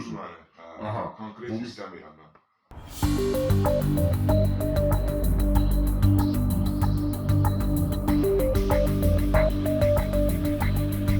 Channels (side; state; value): both; identical; correlation 1.00